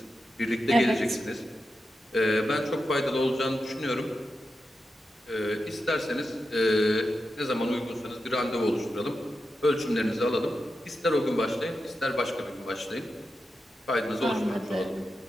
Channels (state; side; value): normal; both; correlation 0.89